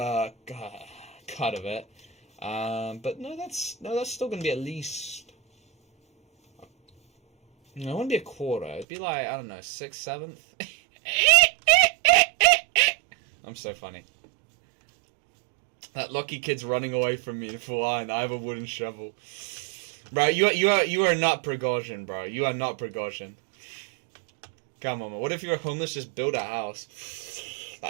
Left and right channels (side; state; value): left; drops out; at 8.8 s